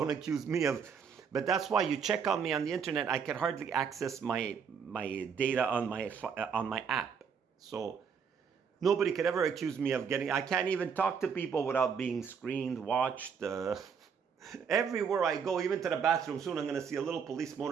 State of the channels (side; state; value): left; quieter; 6.6 dB